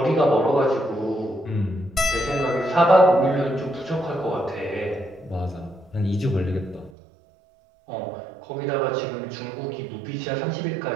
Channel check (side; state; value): left; drops out; at 6.9 s